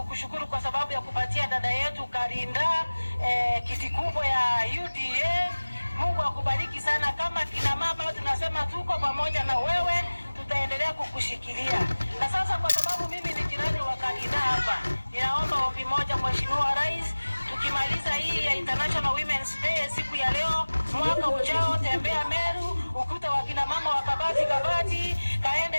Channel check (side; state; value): both; inverted; correlation -1.00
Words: kwa sababu ya kupatia dada yetu Karinda kiti kubwa ya UDA. Mungu akubariki sana. Kama kina mama tunasema tuko pamoja na wewe, tutaendelea kukushikilia. Na sasa kwa sababu mimi ni jirani wa Karinda hapa, ninaomba ombi moja Mheshimiwa Rais, tukimaliza hii ya International Women's Day siku ya leo, mwaka ujao tembea Meru, ukuta wa kina mama wa kabati kabati,